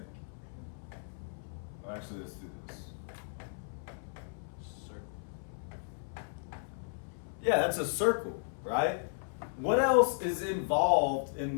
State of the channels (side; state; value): right; silent; 55 dB below the other